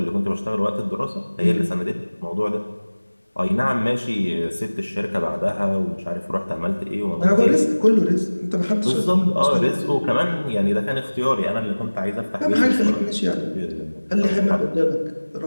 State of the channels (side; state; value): both; inverted; correlation -1.00